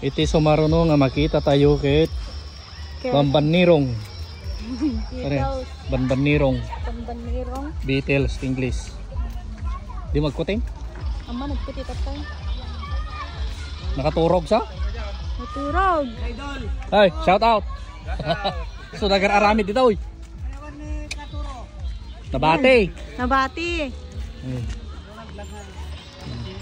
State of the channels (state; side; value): identical; both; correlation 1.00